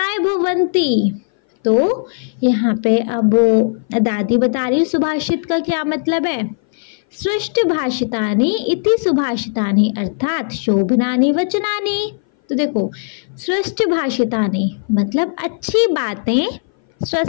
भवन्ति। तो यहाँ पे अब दादी बता रही सुभाषित का क्या मतलब है। सृष्ट भाषितानि इति सुभाषितानि, अर्थात शोभनानि वचनानि। तो देखो सृष्ट भाषितानि मतलब अच्छी बातें,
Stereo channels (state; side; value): silent; right; 59 dB below the other